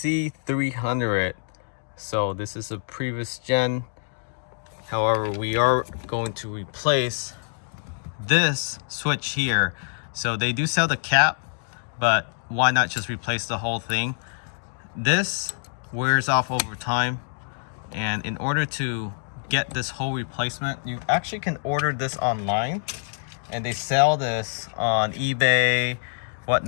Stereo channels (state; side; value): silent; right; digital silence